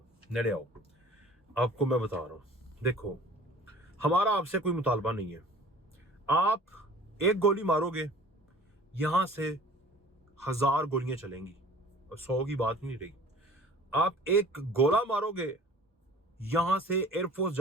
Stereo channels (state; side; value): normal; both; correlation 0.47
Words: नेड़े आओ, आपको मैं बता रहा हूँ। देखो, हमारा आपसे कोई मुतालबा नहीं है। आप एक गोली मारोगे, यहां से 1000 गोलियां चलेंगी और 100 की बात नहीं रही। आप एक गोला मारोगे, यहां से एयरफोर्स